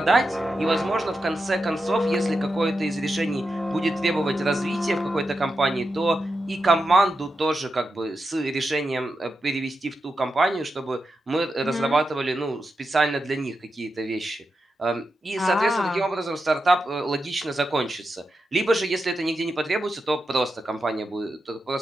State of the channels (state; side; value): normal; both; correlation 0.88